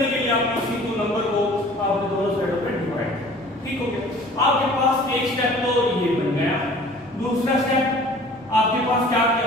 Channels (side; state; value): both; normal; correlation 0.48